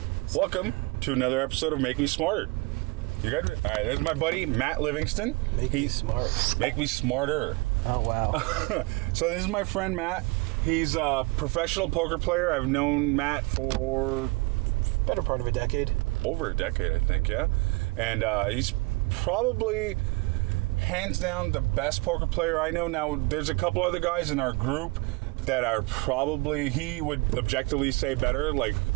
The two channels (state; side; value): quieter; left; 25.8 dB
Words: Welcome to another episode of Make Me Smarter. You good? All right, there's my buddy, Matt Livingston. Make me smart. Make me smarter. Oh, wow. So this is my friend, Matt. He's a professional poker player. I've known Matt for... Better part of a decade. Over a decade, I think, yeah. And he's probably... hands down the best poker player I know. Now, there's a couple other guys in our group that are probably, he would objectively say better, like